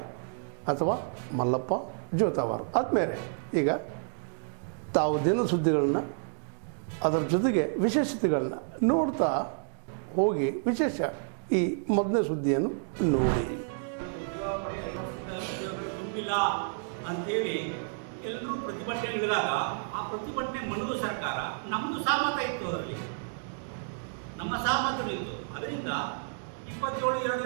ಅಥವಾ ಮಲ್ಲಪ್ಪ ಜೋತಾವಾರ್. ಆದ್ಮೇಲೆ ಈಗ ತಾವು ದಿನ ಸುದ್ದಿಗಳನ್ನು ಅದರ ಜೊತೆಗೆ ವಿಶೇಷತೆಗಳನ್ನ ನೋಡ್ತಾ ಹೋಗಿ ವಿಶೇಷ ಈ ಮೊದಲನೇ ಸುದ್ದಿಯನ್ನು ನೋಡಿ. ತುಂಬಿಲ್ಲ ಅಂತೇಳಿ ಎಲ್ಲರೂ ಪ್ರತಿಭಟನೆ ಇಳಿದಾಗ ಆ ಪ್ರತಿಭಟನೆ ಮನದು ಸರ್ಕಾರ ನಮ್ಮದು ಸಹಮತ ಇತ್ತು, ಅದರಲ್ಲಿ ನಮ್ಮ ಸಹಮತಗಳಿತ್ತು. ಅದರಿಂದ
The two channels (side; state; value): left; silent; digital silence